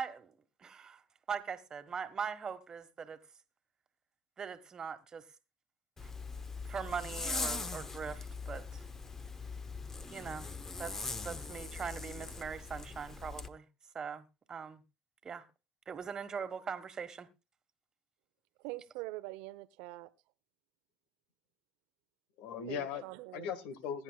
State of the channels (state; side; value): normal; both; correlation 0.58